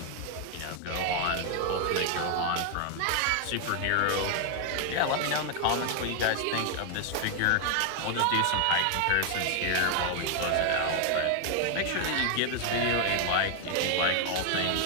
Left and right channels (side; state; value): both; different; correlation 0.00